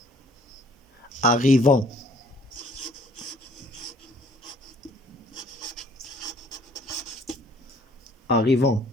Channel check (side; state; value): both; normal; correlation 0.57